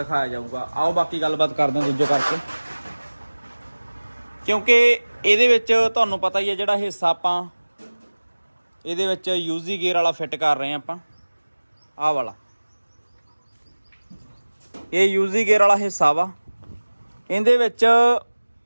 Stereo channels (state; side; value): inverted; both; correlation -1.00